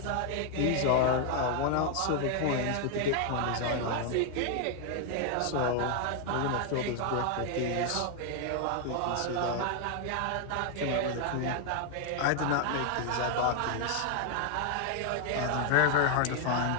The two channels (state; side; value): different; both; correlation 0.00